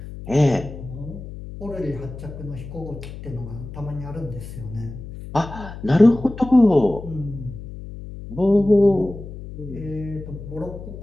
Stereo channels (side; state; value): left; noise; hum, 12 dB below the sound